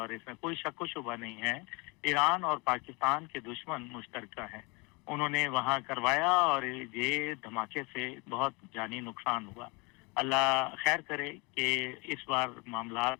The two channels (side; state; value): right; quieter; 28.8 dB